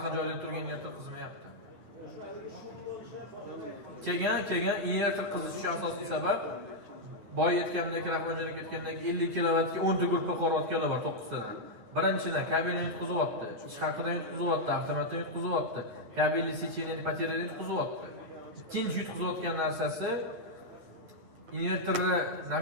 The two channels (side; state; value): left; late; 9.2 ms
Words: joyda turgan inverter qizmayapti. Keyin inverter qizishi asosiy sabab boya aytgandek, Rahmonjon aka aytgandek 50 kilovatga 10 ta gruppa qolib bor 9 tadan. Birinchidan kabelni yutqizyapti, ish haqidan yutqizyapti, avtomatdan yutqizyapti, kabelli secheniya ipotekalarni yutqizyapti. Ikkinchi yutqizayotgan narsasi invertorni